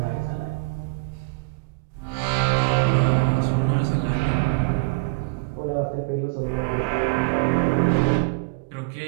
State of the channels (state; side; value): quieter; left; 27.6 dB